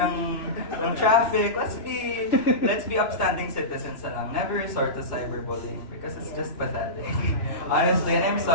traffic. Let's be upstanding citizens na lang. Never resort to cyberbullying because it's just pathetic. Honestly, and I'm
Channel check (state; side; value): late; right; 2.9 ms